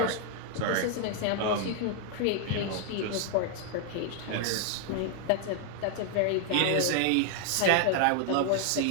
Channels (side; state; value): both; different; correlation 0.00